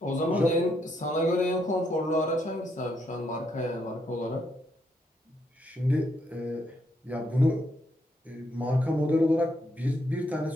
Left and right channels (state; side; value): normal; both; correlation 0.76